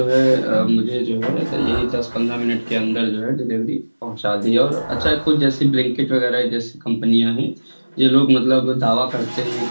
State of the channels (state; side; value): inverted; both; correlation -1.00